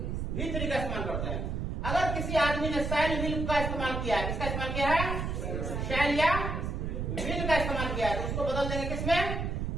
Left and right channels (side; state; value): right; noise; rumble, 2 dB below the sound